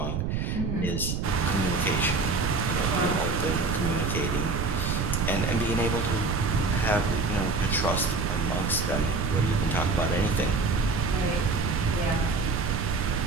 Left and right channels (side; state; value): right; noise; rumble, 1 dB below the sound